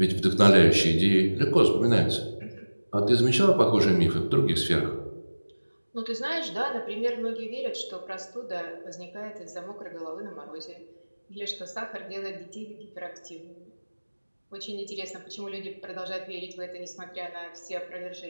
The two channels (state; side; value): inverted; both; correlation -1.00